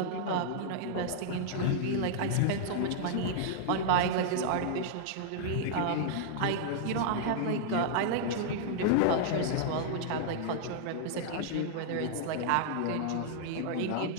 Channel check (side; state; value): both; different; correlation -0.02